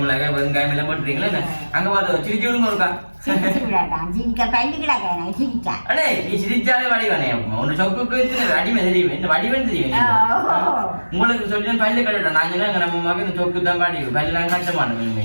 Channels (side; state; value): both; inverted; correlation -1.00